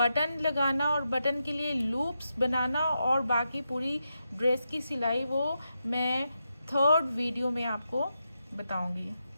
लगाना और बटन के लिए लूप्स बनाना और बाकी पूरी ड्रेस की सिलाई, वो मैं 3rd वीडियो में आपको बताऊंगी।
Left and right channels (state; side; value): inverted; both; correlation -0.85